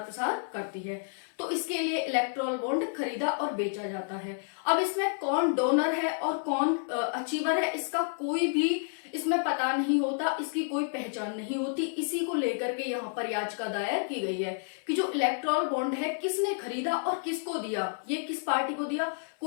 प्रसार करती है। तो इसके लिए इलेक्टोरल बॉन्ड खरीदा और बेचा जाता है। अब इसमें कौन डोनर है और कौन अचीवर है, इसका कोई भी इसमें पता नहीं होता, इसकी कोई पहचान नहीं होती। इसी को लेकर के यहाँ पर याचिका दायर की गई है कि जो इलेक्टोरल बॉन्ड है किसने खरीदा और किसको दिया, ये किस पार्टी को दिया,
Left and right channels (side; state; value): right; silent; 58 dB below the other